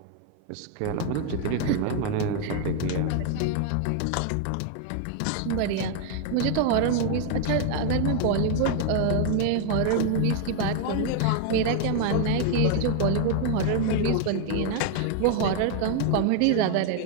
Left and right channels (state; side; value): different; both; correlation 0.00